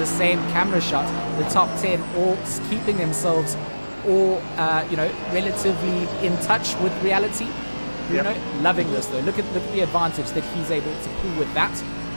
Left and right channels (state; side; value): inverted; both; correlation -1.00